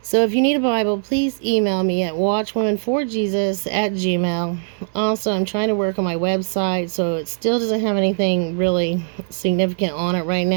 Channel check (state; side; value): silent; left; digital silence